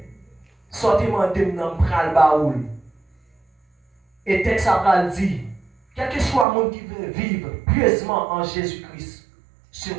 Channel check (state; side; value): drops out; left; at 6.5 s